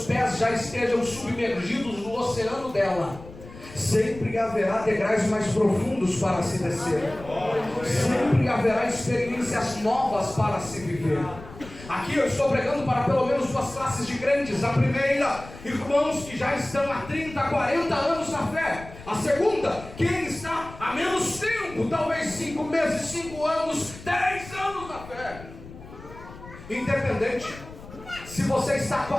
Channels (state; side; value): noise; left; rumble, 16 dB below the sound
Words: pés já estejam submergidos no oceano dela, sempre haverá degraus mais profundos para se descer. Sempre haverá experiências novas para se viver. Aqui eu estou pregando para pelo menos duas classes de crentes. A primeira, irmãos que já estão há 30, 40 anos na fé. A segunda, quem está há menos tempo, talvez 5 meses, 5 anos, 10 anos na fé. Independente, se você está há